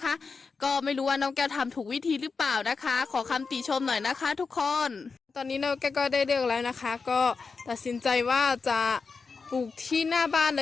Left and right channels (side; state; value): right; quieter; 4.8 dB